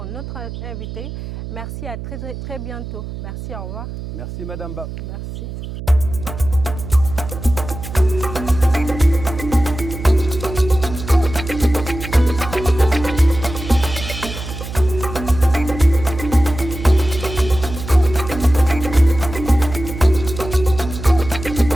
invité. Merci, à très bientôt. Merci, au revoir. Merci Madame Ba. Merci.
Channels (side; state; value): right; noise; hum, 9 dB below the sound